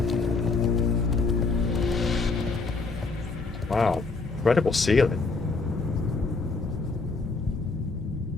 Wow, incredible ceiling.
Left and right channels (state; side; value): quieter; right; 4.0 dB